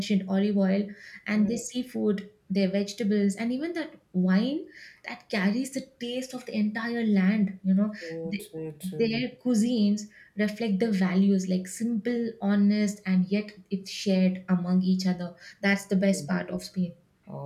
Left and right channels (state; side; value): identical; both; correlation 1.00